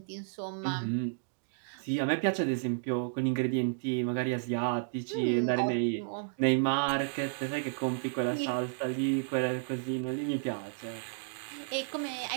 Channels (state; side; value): silent; left; digital silence